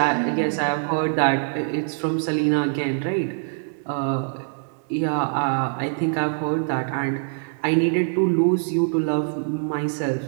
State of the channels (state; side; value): silent; left; digital silence